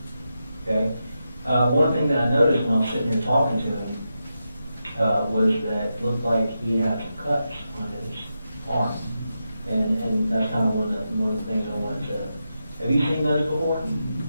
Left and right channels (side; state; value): both; inverted; correlation -0.88